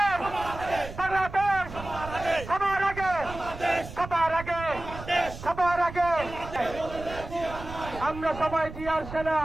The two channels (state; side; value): noise; right; rumble, 12 dB below the sound